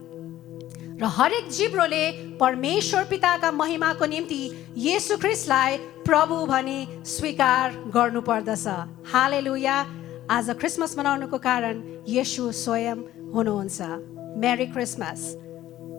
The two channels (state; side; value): quieter; right; 13.8 dB